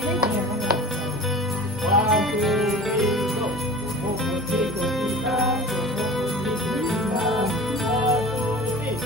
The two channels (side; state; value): both; normal; correlation 0.37